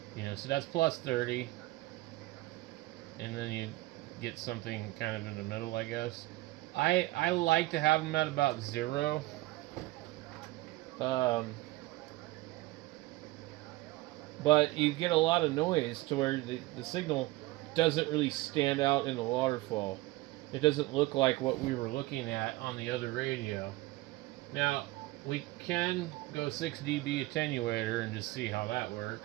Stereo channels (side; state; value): left; quieter; 19.5 dB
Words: You know, so that's plus 30. And then you get something kind of in the middle, I guess. I like to have them at about 0. But you get a lot of noise to where the signal doesn't really stand out in the waterfall. It doesn't look like what we were looking at on the other radio. Now, we can go 6 dB attenuator and just see how that